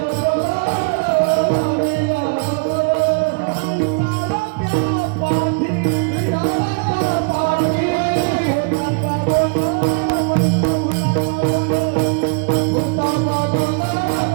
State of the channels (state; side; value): quieter; left; 31.5 dB